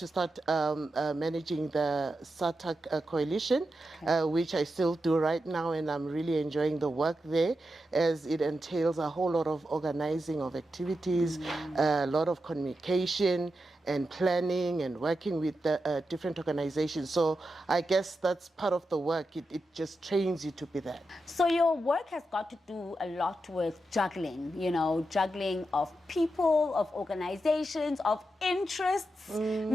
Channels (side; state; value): both; normal; correlation 0.88